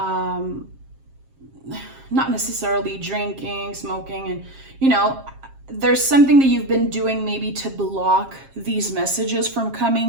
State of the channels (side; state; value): left; late; 7.5 ms